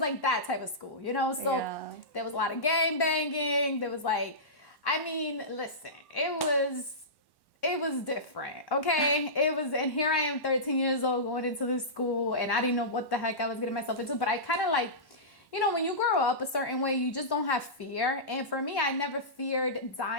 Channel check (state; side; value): late; right; 1.1 ms